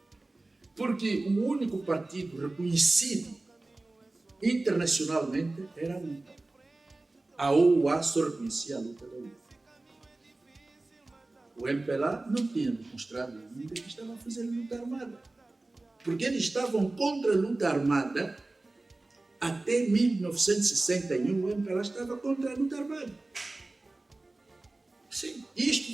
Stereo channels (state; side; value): quieter; left; 3.0 dB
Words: Porque o único partido reconhecido internacionalmente era a luta. A OUA só reconhecia a luta da luta. O MPLA não tinha demonstrado ainda que estava a fazer luta armada. Porque eles estavam contra a luta armada até 1961. O MPLA estava contra a luta armada. Sim, isto